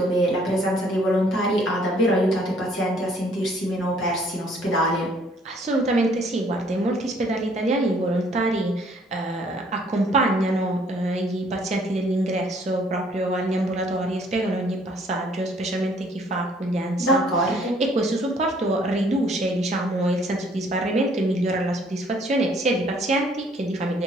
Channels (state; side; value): normal; both; correlation 0.61